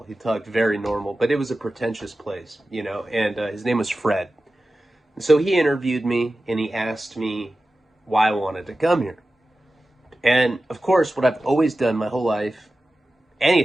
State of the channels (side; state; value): both; normal; correlation 0.94